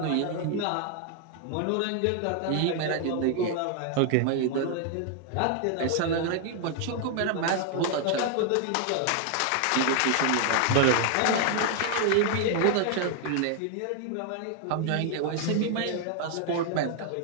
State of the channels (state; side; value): different; both; correlation 0.00